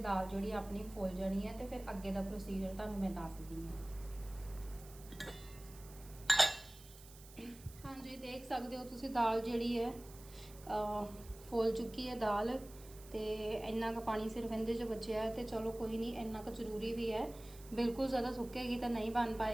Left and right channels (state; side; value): noise; right; hiss, 19 dB below the sound